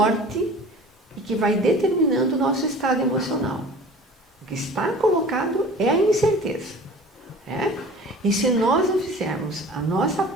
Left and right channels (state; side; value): normal; both; correlation 0.43